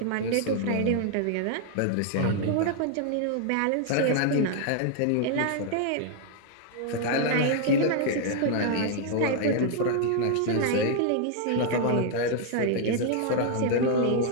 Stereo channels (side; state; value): both; different; correlation 0.00